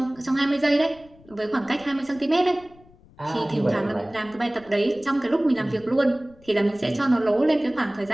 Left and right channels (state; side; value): noise; left; rumble, 26 dB below the sound